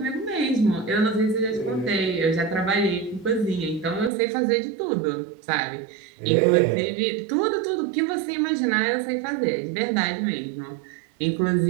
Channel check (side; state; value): left; drops out; at 4.1 s